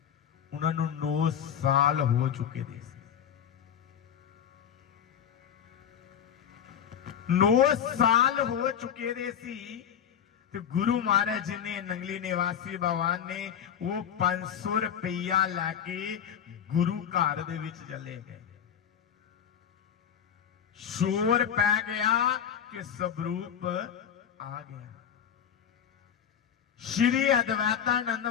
उन्हां नू 9 साल हो चुके थे। 9 साल हो चुके दे सी तो गुरु महाराज जी ने नंगली निवासी भगवान ने वो 500 रुपया लैके गुरु घर दे विच चले गए। शोर पै गया कि स्वरूप आ गया। श्री अद्वैतानंद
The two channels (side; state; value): right; quieter; 8.7 dB